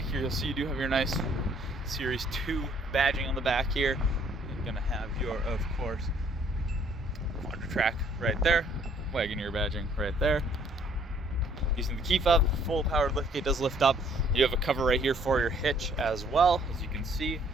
here. You'll see you do have your nice Series 2 badging on the back here. You're gonna have your, of course, Quadra Track right there. Wagoneer badging right there. Using the key fob, full powered liftgate does lift up. You have a cover right here for your hitch as well. As you can see,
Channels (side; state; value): both; normal; correlation 0.62